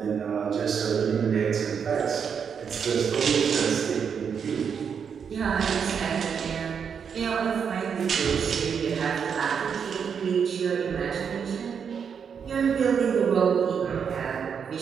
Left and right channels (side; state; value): left; quieter; 6.9 dB